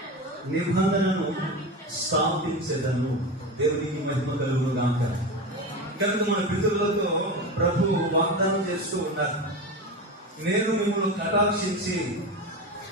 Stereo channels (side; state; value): both; normal; correlation 0.24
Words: నిబంధనను స్థాపించదను. దేవునికి మహిమ కలుగును గాక. కనుక మన పితరులతో ప్రభు వాగ్దానం చేస్తూ ఉన్నారు, నేను మిమ్మల్ని కటాక్షించి,